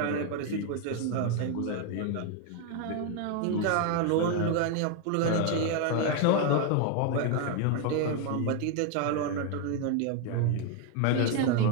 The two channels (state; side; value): different; both; correlation 0.01